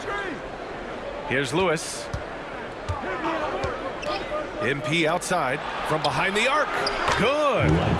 Here's Lewis. MP outside from behind the arc. Good.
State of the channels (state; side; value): identical; both; correlation 1.00